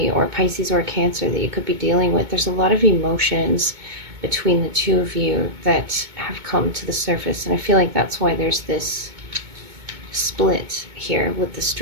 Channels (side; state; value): left; late; 2.2 ms